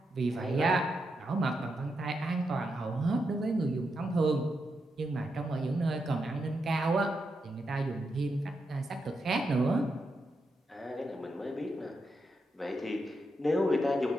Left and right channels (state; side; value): normal; both; correlation 0.84